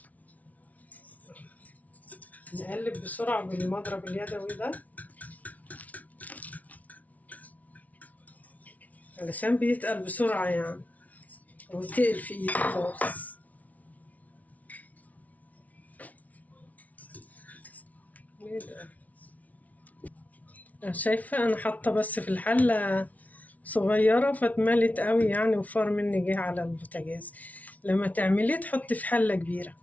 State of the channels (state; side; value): late; right; 0.071 ms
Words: نقلب بسرعة بالمضرب اليدوي ده علشان بيتقل بسرعة يعني، وتقل في ايدي خالص. شايفة انا حاطة بس في الحلة صغيرة فاتملت قوي يعني، وفار مني جه على البوتاجاز. لما تعمليه تحطي في حلة كبيرة،